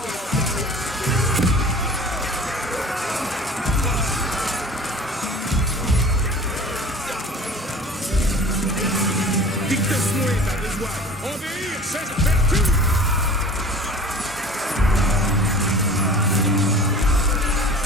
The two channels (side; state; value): both; normal; correlation 0.42